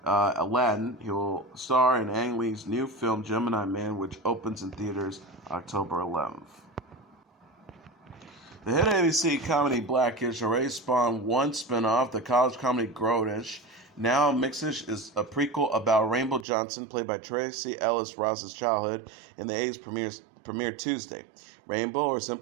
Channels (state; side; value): drops out; left; at 16.4 s